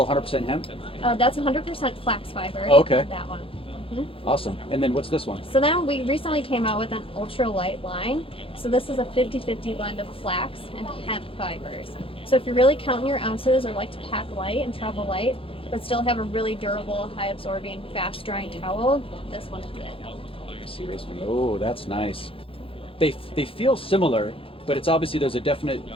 100% hemp? That's 100% flax fiber. Oh, okay. That one. Awesome. And then what's this one? So then we recently came out with an ultralight line. So this is a 50-50 blend of flax and hemp fibers. So if you're really counting your ounces or like to pack light and travel light, but still have a really durable, high absorbing, fast drying towel, this one is it. Oh, that's nice. They feel similar, but it's obviously there's a definite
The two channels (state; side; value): late; right; 0.27 ms